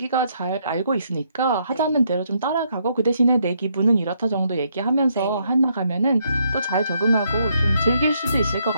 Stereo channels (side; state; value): both; inverted; correlation -0.74